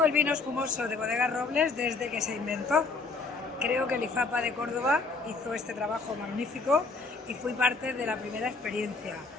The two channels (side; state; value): right; quieter; 4.0 dB